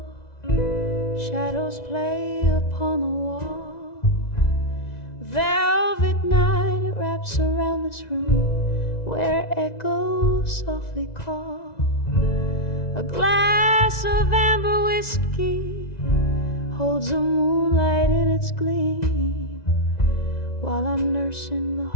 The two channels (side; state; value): right; late; 1.9 ms